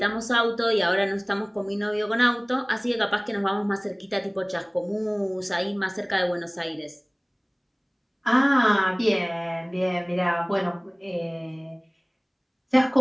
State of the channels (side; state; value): both; identical; correlation 1.00